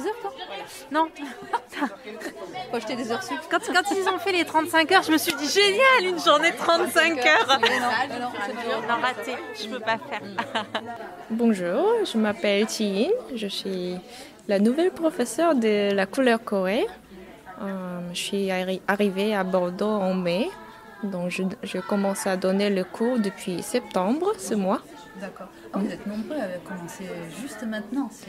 heures, toi? Non. Faut acheter des heures sup. Quand ils ont fait les 35 heures, je me suis dit génial, une journée de 35 heures. Non, raté, je peux pas faire. Bonjour, je m'appelle Chi-In, je suis la nouvelle professeure de la couleur Corée. Je suis arrivée à Bordeaux en mai, donc je commence à donner le cours depuis septembre, ce mois. D'accord. Vous êtes nombreux à commencer juste maintenant.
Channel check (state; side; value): identical; both; correlation 1.00